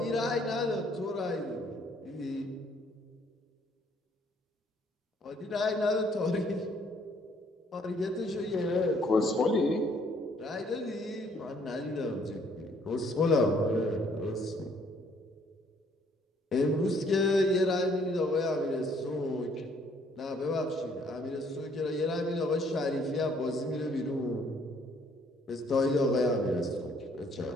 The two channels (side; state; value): both; normal; correlation 0.64